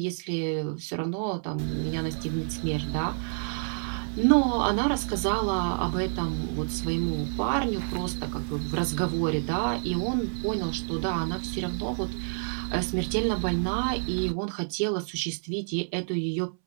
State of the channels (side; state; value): left; silent; 59 dB below the other